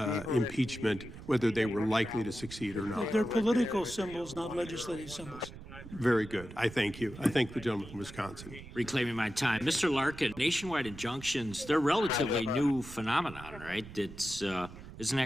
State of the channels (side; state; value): right; noise; rumble, 15 dB below the sound